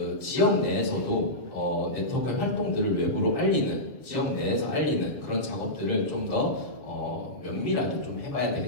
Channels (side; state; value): right; late; 7.1 ms